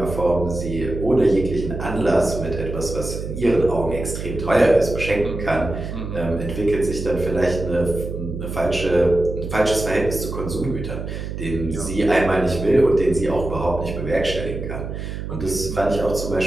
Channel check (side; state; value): right; noise; hum, 6 dB below the sound